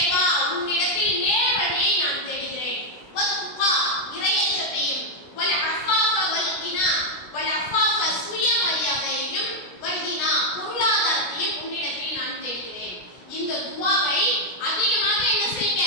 உன்னிடத்தில் நேர் வழியை நான் தேடுகிறேன். வத்துகா, இறையச்சத்தையும், வல் அஃபாஃப வல் கினா, வல் அஃபாஃப சுயமரியாதையையும், வல் கினா பொருளாதாரத்தையும் உன்னிடத்தில் நான் தேடுகிறேன். இந்த துஆவை அதிகமாக என்ன செய்யுங்க?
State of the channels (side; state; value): right; late; 17 ms